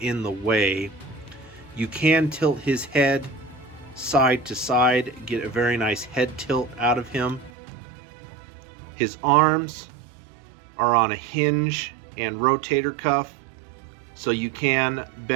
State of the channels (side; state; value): left; drops out; at 7.5 s